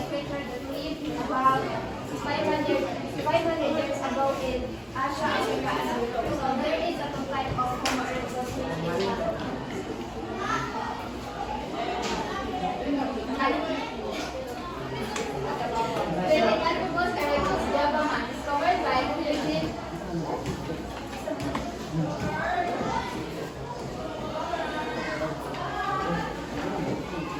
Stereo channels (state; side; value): identical; both; correlation 1.00